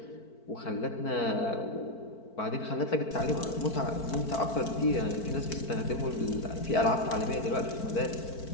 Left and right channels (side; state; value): right; late; 4.5 ms